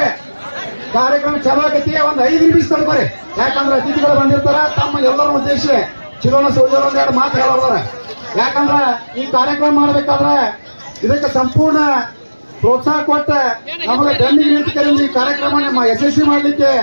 ಕಾರ್ಯಕ್ರಮ ಚಾಲು ಆಗೈತಿ. ಒಂದು 5 ನಿಮಿಷ ತಡ್ಕೋರಿ. ಯಾಕಂದ್ರೆ ಅತಿಥಿಗಳು ಬಂದಿರ್ತಾರ. ತಮ್ಮ ಎಲ್ಲರ ಉದ್ದೇಶ ಚಿರೋಣ ಸೋಜರ್ ಒಂದೆರಡು ಮಾತು ಹೇಳೋದಾರ. ಯಾಕಂದ್ರ ಈ ಕಾರ್ಯಕ್ರಮ ಮಾಡಬೇಕಾದ್ರೆ ಇದಕ್ಕೆ ಸಂಪೂರ್ಣ ಪ್ರೋತ್ಸಾಹ ಕೊಟ್ಟ ನಮಗೆ ಬೆನ್ನಿಗೆ ನಿಂತು ಈ ಕಾರ್ಯಕ್ರಮ ನಮ್ಮ ಯಶಸ್ವಿ ಮಾಡಲಿಕ್ಕೆ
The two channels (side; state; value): both; inverted; correlation -1.00